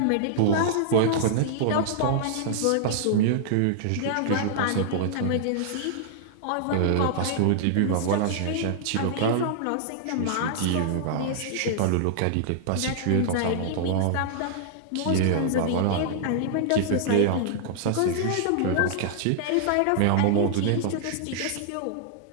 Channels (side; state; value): both; different; correlation -0.01